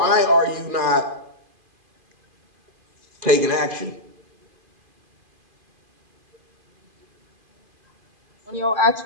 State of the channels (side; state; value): left; late; 2.5 ms